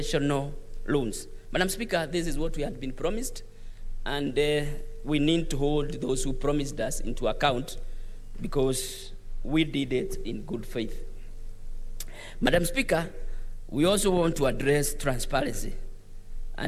loans. Madam Speaker, this is what we had been promised, and we need to hold those who promised us into account, because we did it in good faith. Madam Speaker, we also want to address transparency,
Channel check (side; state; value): both; identical; correlation 1.00